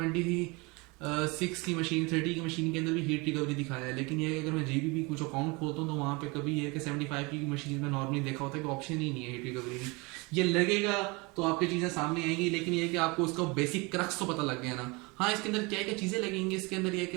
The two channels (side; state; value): left; quieter; 26.7 dB